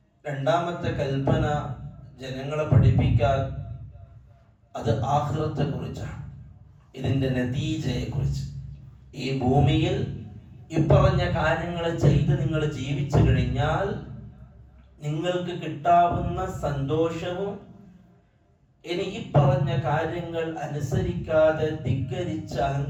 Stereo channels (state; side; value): identical; both; correlation 1.00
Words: രണ്ടാമത്തെ കൽപ്പന ജനങ്ങളെ പഠിപ്പിക്കാൻ അത് ആഖിറത്തെ കുറിച്ചാണ്, ഇതിന്റെ നതീജയെ കുറിച്ച്. ഈ ഭൂമിയിൽ ഇപ്പറഞ്ഞ കാര്യങ്ങൾ ചെയ്ത് നിങ്ങൾ ജീവിച്ചു കഴിഞ്ഞാൽ നിങ്ങൾക്ക് കിട്ടാവുന്ന സന്തോഷവും ഇനി ഈ പറഞ്ഞ കാര്യങ്ങൾ അനുസരിക്കാതെ ധിക്കരിച്ച്